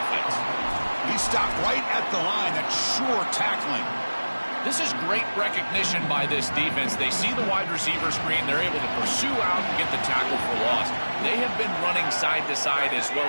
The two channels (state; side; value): inverted; both; correlation -1.00